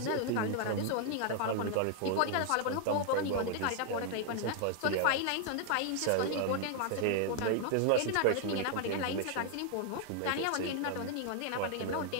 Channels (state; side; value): different; both; correlation 0.00